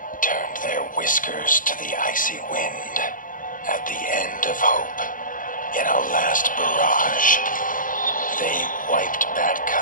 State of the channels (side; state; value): right; late; 0.39 ms